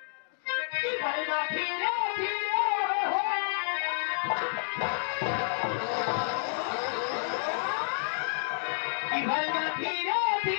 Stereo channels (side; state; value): right; silent; digital silence